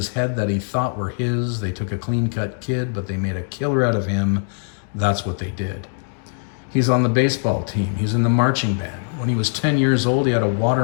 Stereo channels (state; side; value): silent; right; 61 dB below the other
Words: head that he thought were his. They took a clean cut kid, but they made a killer out of him. That's what they did. He's on the baseball team. He's in the marching band. When he was 10 years old, he had a